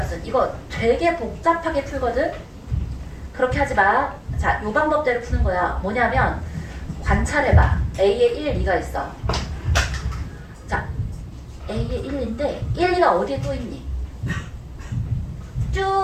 이거 되게 복잡하게 풀거든? 그렇게 하지 마. 자, 요 방법대로 푸는 거야. 뭐냐면 관찰해봐. A에 1, 2가 있어. 자, A에 1인데 1, 2가 어디에 또 있니?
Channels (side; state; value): both; identical; correlation 1.00